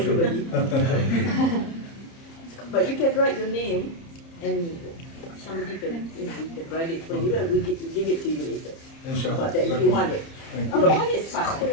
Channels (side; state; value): right; late; 30 ms